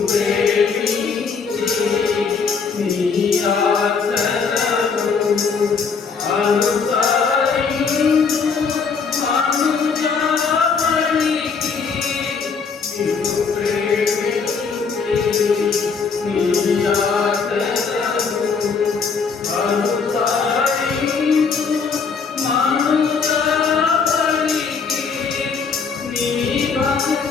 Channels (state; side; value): quieter; right; 5.4 dB